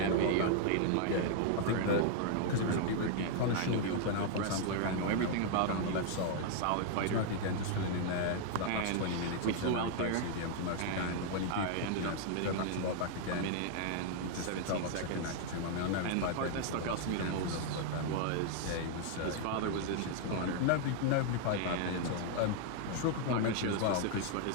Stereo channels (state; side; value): different; both; correlation 0.00